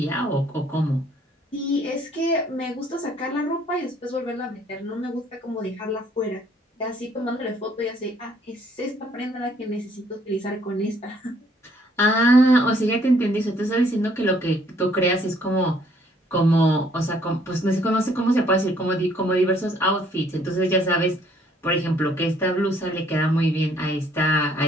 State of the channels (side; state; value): both; normal; correlation 0.63